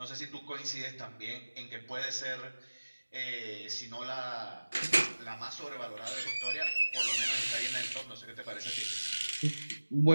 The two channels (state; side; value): inverted; both; correlation -1.00